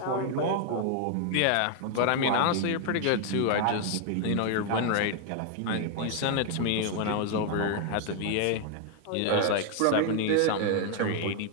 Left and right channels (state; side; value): different; both; correlation 0.00